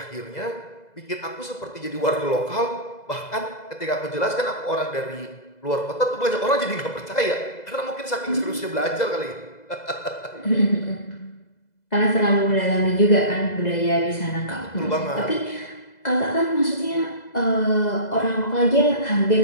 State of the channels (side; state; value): right; late; 2.0 ms